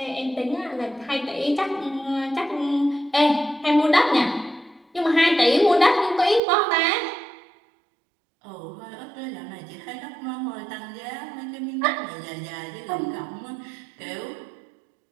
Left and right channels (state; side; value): drops out; left; at 6.4 s